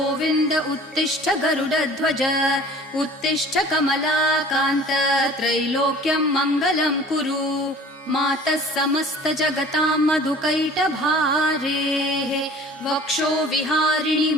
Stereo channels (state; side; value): normal; both; correlation 0.46